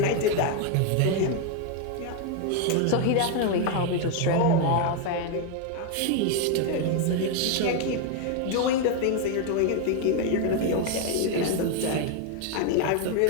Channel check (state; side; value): different; both; correlation 0.01